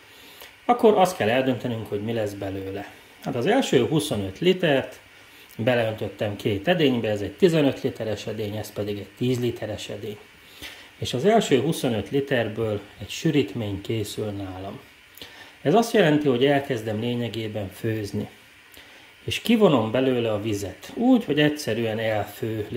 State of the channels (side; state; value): both; identical; correlation 1.00